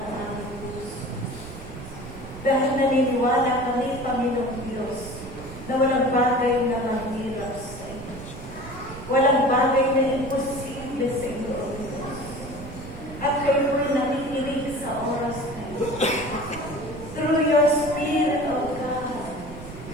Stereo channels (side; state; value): right; noise; rumble, 13 dB below the sound